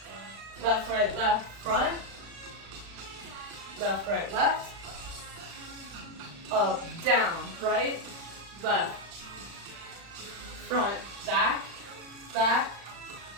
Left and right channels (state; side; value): late; left; 36 ms